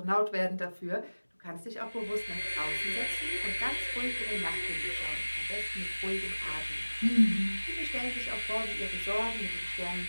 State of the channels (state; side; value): inverted; both; correlation -1.00